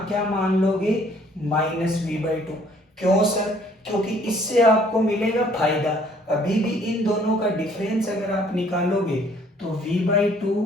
क्या मान लोगे -V/2। क्यों सर? क्योंकि इससे आपको मिलेगा फायदा। अभी भी इन दोनों का डिफरेंस अगर आप निकालोगे तो V/2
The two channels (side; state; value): both; normal; correlation 0.60